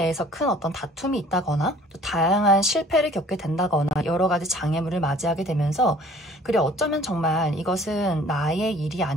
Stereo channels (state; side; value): normal; both; correlation 0.52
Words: 큰 어떤 다툼이 있다거나 또 다양한 실패를 겪게 된다거나 여러 가지 장애물을 맞이하게 되면서 그래 어쩌면 정말 이것은 나의 일이